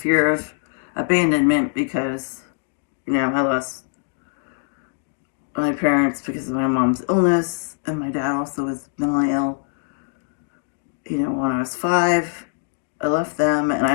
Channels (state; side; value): silent; right; digital silence